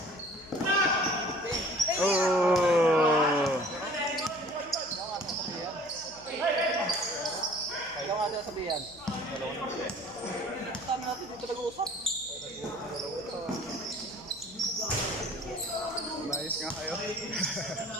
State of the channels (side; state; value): left; noise; hum, 23 dB below the sound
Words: Oh! Ikaw nga sila sabihan. Tama natin dito nag-uusap. Nice nga kayo.